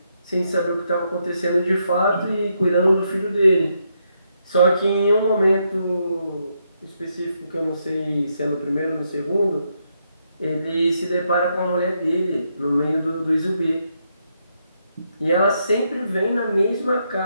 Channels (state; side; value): inverted; both; correlation -0.79